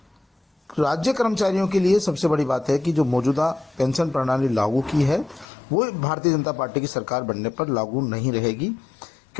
राज्य कर्मचारियों के लिए सबसे बड़ी बात है कि जो मौजूदा पेंशन प्रणाली लागू की है वो भारतीय जनता पार्टी की सरकार बनने पर लागू नहीं रहेगी,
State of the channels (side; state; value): right; drops out; at 5.5 s